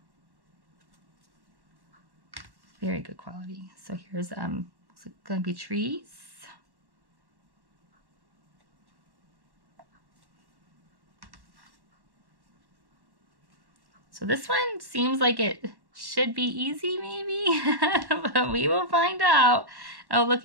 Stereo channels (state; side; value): late; left; 1.1 ms